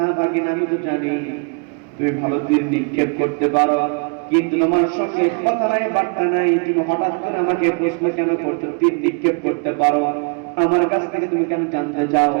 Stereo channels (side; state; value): left; quieter; 35.9 dB